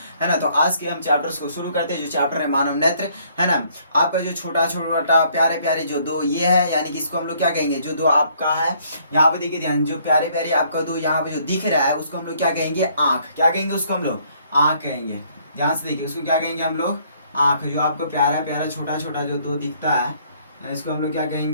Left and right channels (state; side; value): inverted; both; correlation -0.64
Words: है ना। तो आज के हम चैप्टर्स को शुरू करते हैं। जो चैप्टर है मानव नेत्र, है ना। आपका जो छोटा छोटा प्यारे प्यारे जो दो ये है, यानी कि इसको हम लोग क्या कहेंगे, जो दो आपका है यहाँ पे देखिए ध्यान, जो प्यारे प्यारे आपका दो यहाँ पे जो दिख रहा है उसको हम लोग क्या कहेंगे, आँख। क्या कहेंगे उसको हम लोग, आँख कहेंगे। ध्यान से देखिए उसको क्या कहेंगे हम लोग, आँख। जो आपको प्यारा प्यारा छोटा छोटा जो दो दिखता है इसको हम लोग क्या